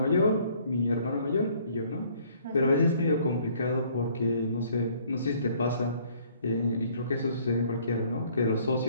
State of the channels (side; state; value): both; inverted; correlation -0.61